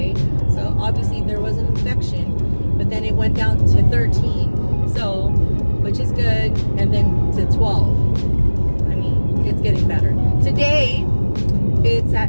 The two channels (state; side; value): inverted; both; correlation -1.00